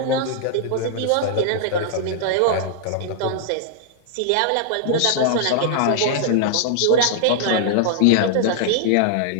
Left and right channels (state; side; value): different; both; correlation -0.01